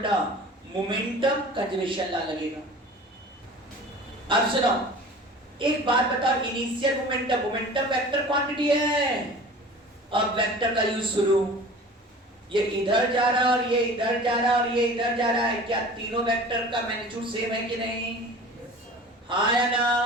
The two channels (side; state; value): both; normal; correlation 0.41